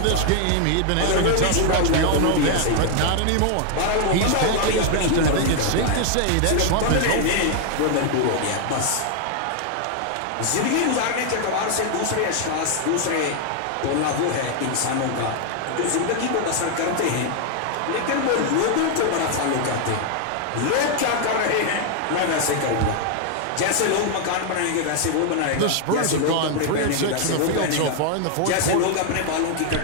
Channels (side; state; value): both; different; correlation 0.00